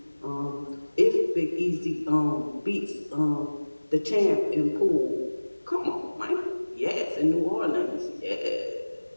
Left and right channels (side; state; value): both; inverted; correlation -1.00